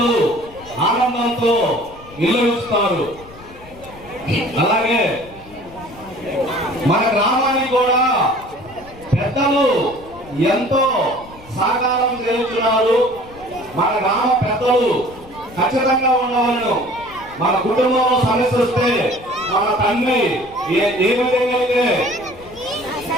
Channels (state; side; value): noise; left; rumble, 21 dB below the sound